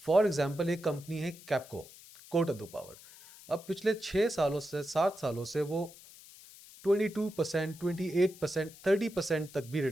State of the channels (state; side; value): noise; left; hiss, 20 dB below the sound